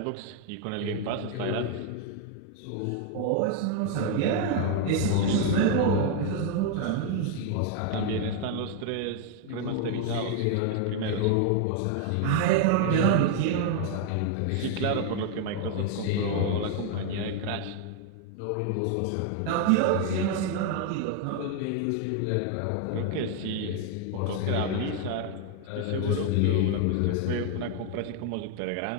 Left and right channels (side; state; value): both; different; correlation 0.00